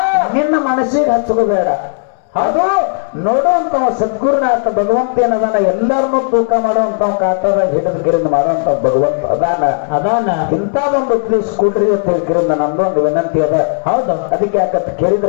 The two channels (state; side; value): silent; right; digital silence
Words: ನಿನ್ನ ಮನಸ್ಸಿಗೆ ಹಚ್ಕೋಬೇಡ. ಅದು ನೋಡುವಂತ ಸದ್ಗುರುನಾಥ ಭಗವಂತ ಏನದಾನ, ಎಲ್ಲರನ್ನೂ ತೂಕ ಮಾಡುವಂತ ಕಾಟದಾಗ ಹಿಡಿದು ಕಿರಿಂದ ಮಾಡುವಂತ ಭಗವಂತ ಅದಾನ ಇಂಥದೊಂದು ಪ್ಲೀಸ್ ಕೊಡ್ರಿ ಅಂತ ಹೇಳ್ಕಿರಿಂದ ನಮ್ದೊಂದು ವಿನಂತಿ ಅದ. ಹೌದು, ಅದಕ್ಕೆ ಯಾಕಂತ